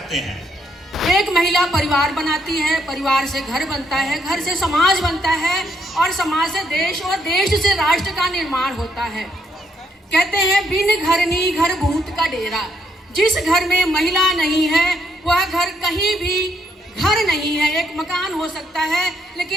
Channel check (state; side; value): normal; both; correlation 0.73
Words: हैं। एक महिला परिवार बनाती है, परिवार से घर बनता है, घर से समाज बनता है और समाज से देश और देश से राष्ट्र का निर्माण होता है। कहते हैं बिन घरनी घर भूत का डेरा। जिस घर में महिला नहीं है वह घर कहीं भी घर नहीं है। एक मकान हो सकता है